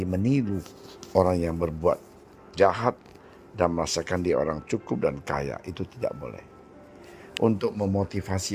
meniru orang yang berbuat jahat dan merasakan dia orang cukup dan kaya. Itu tidak boleh. Untuk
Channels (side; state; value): both; identical; correlation 1.00